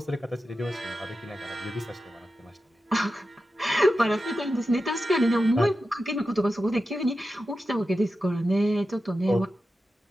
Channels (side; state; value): both; normal; correlation 0.91